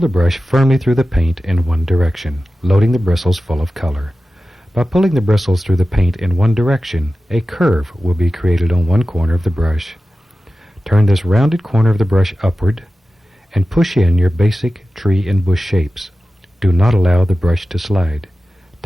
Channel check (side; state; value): both; normal; correlation 0.94